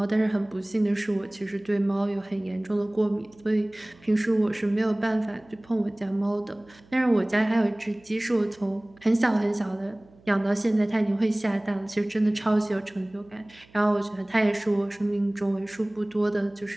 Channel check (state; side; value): noise; right; hum, 28 dB below the sound